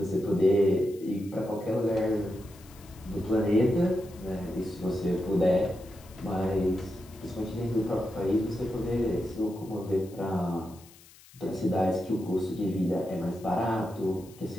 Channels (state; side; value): noise; left; hiss, 24 dB below the sound